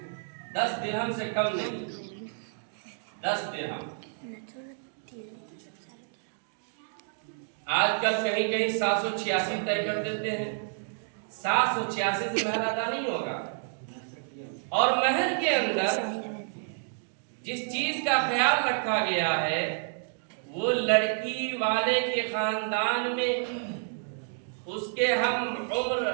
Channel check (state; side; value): silent; left; digital silence